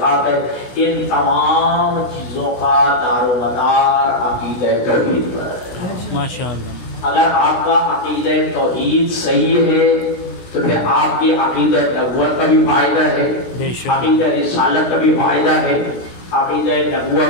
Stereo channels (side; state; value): right; late; 16 ms